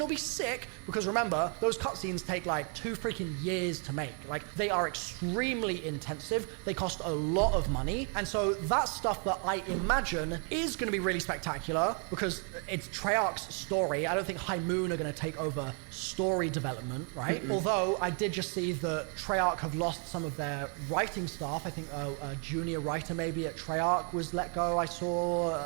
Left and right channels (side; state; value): left; quieter; 39.6 dB